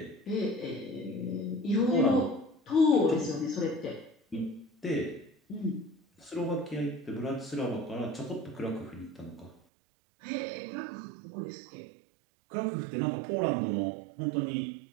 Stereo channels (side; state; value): left; drops out; at 9.6 s